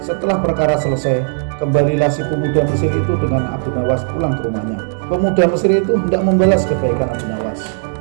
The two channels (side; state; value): left; silent; digital silence